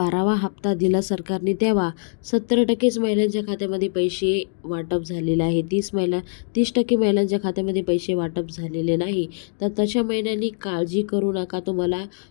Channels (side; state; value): right; silent; digital silence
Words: हप्ता दिला सरकारने तेव्हा 70%च महिलांच्या खात्यामध्ये पैसे वाटप झालेले आहे. 30% महिलांच्या खात्यामध्ये पैसे वाटप झालेले नाही. तर तशा महिन्यांनी काळजी करू नका. तुम्हाला